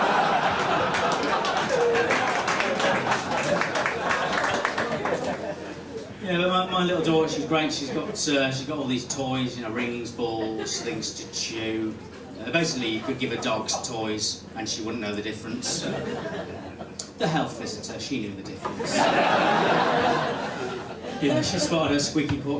Yeah, but my little daughter, she's great. She's got all these toys, you know, rings, balls, things to chew. Basically, you could give her dogs toys, and she wouldn't know the difference. The health visitor, she knew the difference. Yeah, she spotted her squeaky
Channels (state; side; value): identical; both; correlation 1.00